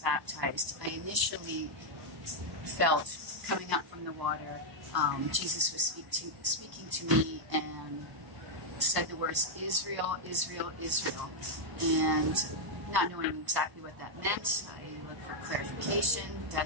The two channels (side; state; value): left; late; 1.0 ms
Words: I initially felt, coming up from the water, Jesus was speaking to me and said the words, Israel, Israel, Israel. And not knowing exactly what that meant, I looked for clarification.